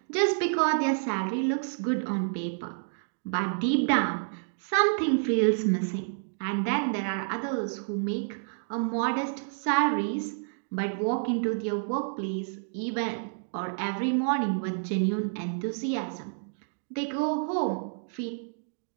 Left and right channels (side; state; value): left; silent; digital silence